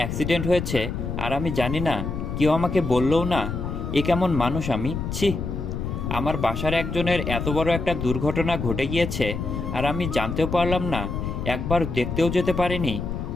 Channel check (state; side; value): noise; left; rumble, 4 dB below the sound